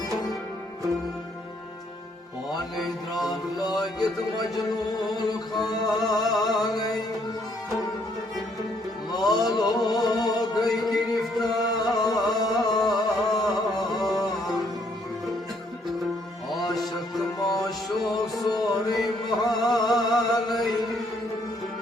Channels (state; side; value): normal; both; correlation 0.68